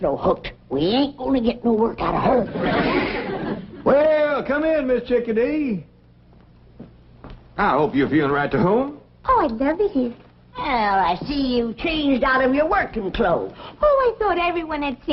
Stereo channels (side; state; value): both; identical; correlation 1.00